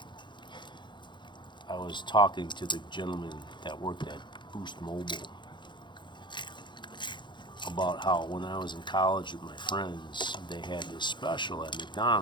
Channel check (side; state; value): right; late; 0.23 ms